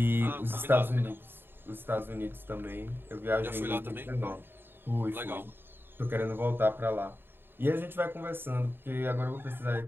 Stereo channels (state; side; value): late; left; 0.10 ms